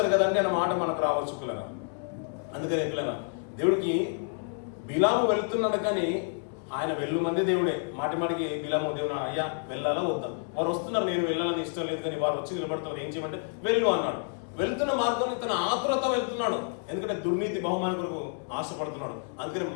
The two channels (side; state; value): right; silent; 56 dB below the other